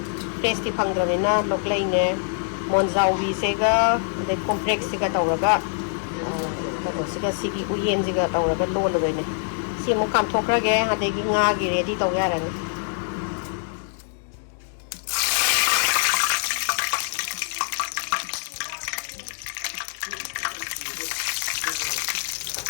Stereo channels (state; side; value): silent; right; digital silence